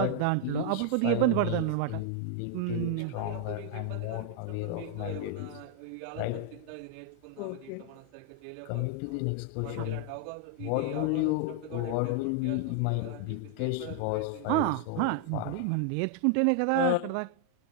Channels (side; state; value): both; different; correlation 0.00